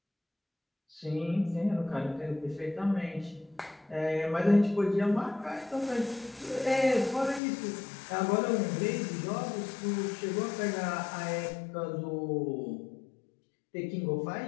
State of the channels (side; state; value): right; drops out; at 7.4 s